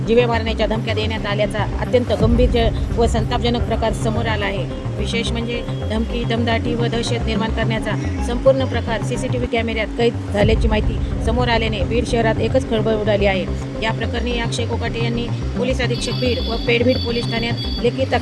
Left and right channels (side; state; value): both; identical; correlation 1.00